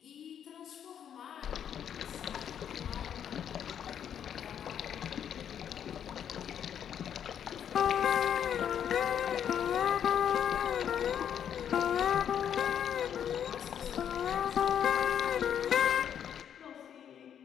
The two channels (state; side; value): quieter; right; 9.0 dB